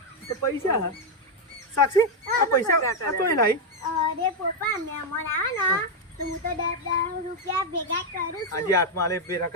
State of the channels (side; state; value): both; normal; correlation 0.02